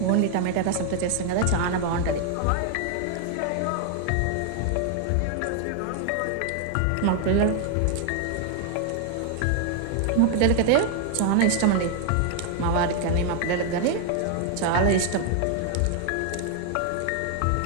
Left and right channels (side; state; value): both; different; correlation 0.00